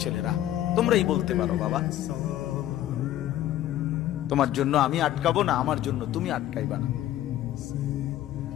ছেলেরা, তোমরাই বলতে পারো বাবা। তোমার জন্য আমি আটকাবো না, আমার জন্য তুমি আটকাইবা না।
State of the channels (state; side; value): quieter; right; 13.0 dB